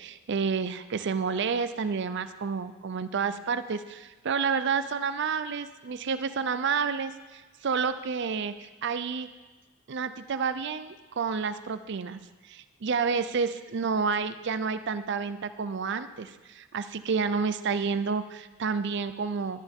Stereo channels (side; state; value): left; quieter; 5.2 dB